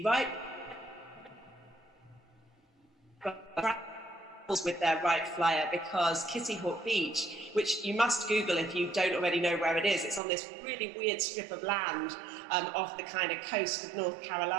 right with their right flyer, because Kitty Hawk Beach, which you must Google if you don't already know where it is, it's on this really weird strip of land off the kind of coast of North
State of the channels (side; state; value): left; drops out; at 10.2 s